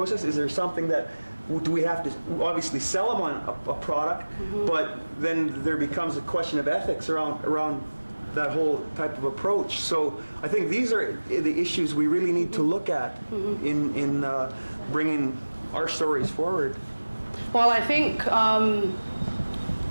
Is there something that, do we have to obviously sell them on a product, but then there becomes a question of ethics around that whole type of approach. So I think these are the issues we really need to look at in bringing our stories forward. Well, I think I'm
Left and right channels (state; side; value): inverted; both; correlation -1.00